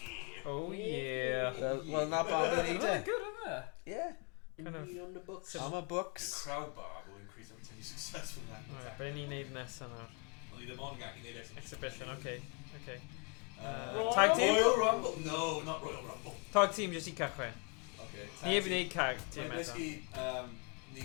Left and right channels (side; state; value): right; quieter; 35.3 dB